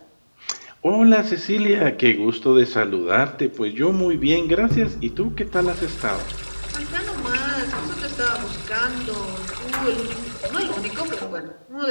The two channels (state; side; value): inverted; both; correlation -1.00